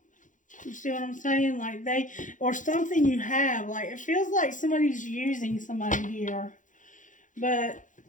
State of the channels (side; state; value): right; late; 0.37 ms